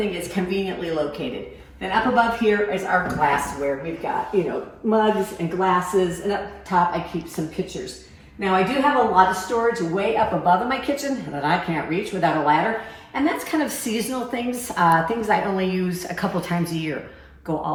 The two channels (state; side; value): identical; both; correlation 1.00